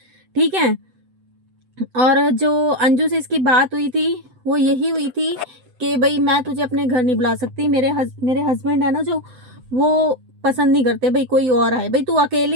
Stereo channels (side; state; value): left; late; 7.9 ms